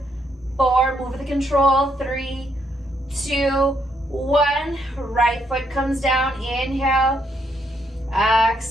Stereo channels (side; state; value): both; normal; correlation 0.74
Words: 4, move with control, 3, 2, 1, right foot comes down, inhale,